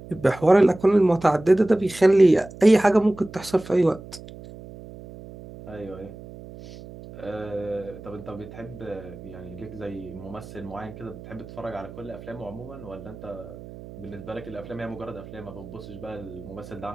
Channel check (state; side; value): noise; right; hum, 16 dB below the sound